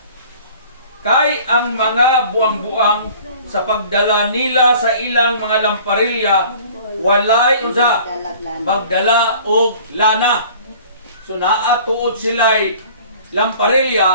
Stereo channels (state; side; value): inverted; both; correlation -0.49